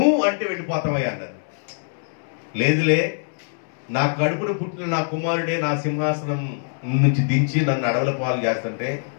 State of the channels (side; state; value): right; silent; 63 dB below the other